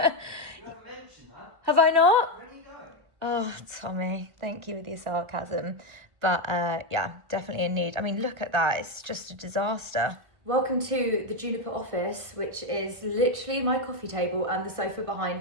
You haven't mentioned that. Have I not? Where are you going? Oh, Tommy, thank you with your sarcasm. But yeah, definitely in need. I mean, look at that. It's just a disaster. Welcome to the Juniper office, which is literally my coffee table and the sofa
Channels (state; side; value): late; left; 1.3 ms